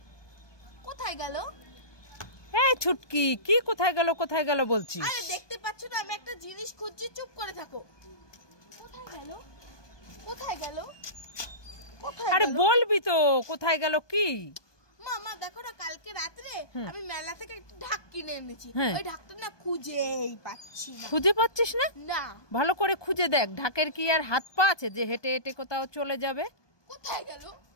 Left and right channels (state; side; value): late; right; 1.2 ms